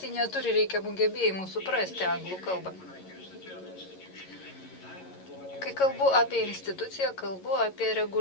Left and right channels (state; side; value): late; right; 11 ms